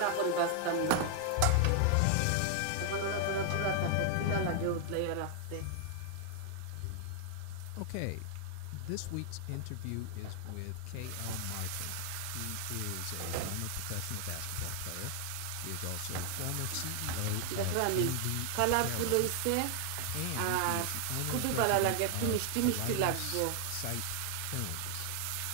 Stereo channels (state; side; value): different; both; correlation 0.00